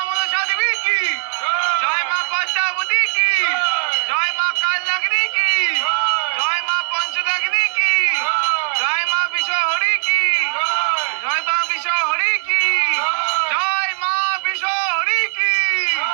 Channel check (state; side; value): silent; left; digital silence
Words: মনসা দেবী কি, জয় মা পদ্মাবতী কি, জয় মা কালনাগিনী কি, জয় মা পঞ্চরাগিনী কি, জয় মা বিশ্বহরি কি, জয় মা বিশ্বহরি কি, জয় মা বিশ্বহরি কি,